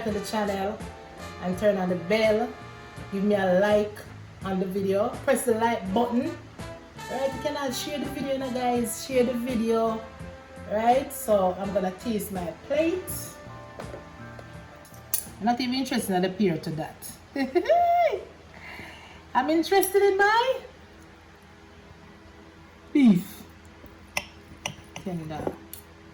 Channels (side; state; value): both; identical; correlation 1.00